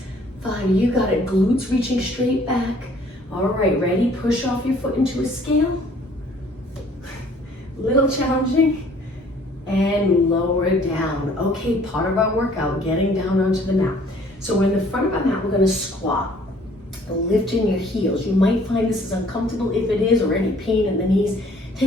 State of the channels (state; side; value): normal; both; correlation 0.57